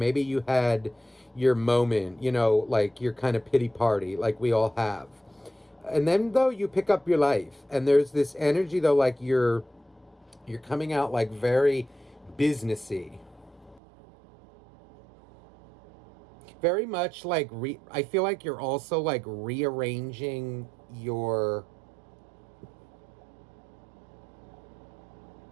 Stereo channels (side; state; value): left; drops out; at 13.8 s